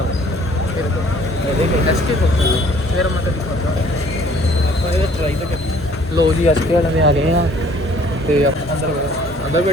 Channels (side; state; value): both; normal; correlation 0.57